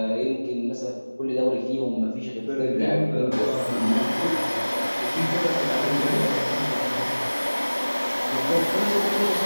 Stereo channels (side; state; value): both; inverted; correlation -1.00